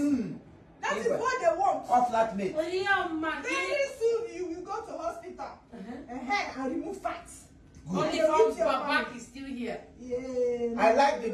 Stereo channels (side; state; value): both; identical; correlation 1.00